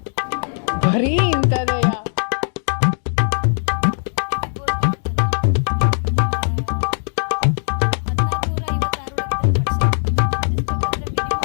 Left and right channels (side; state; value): right; silent; digital silence